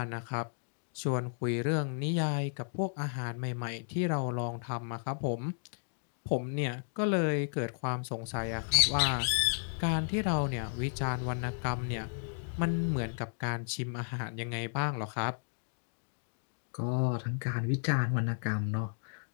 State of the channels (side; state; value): right; silent; digital silence